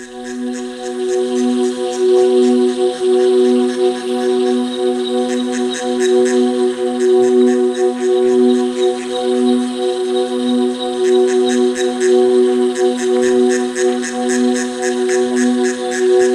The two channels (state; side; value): identical; both; correlation 1.00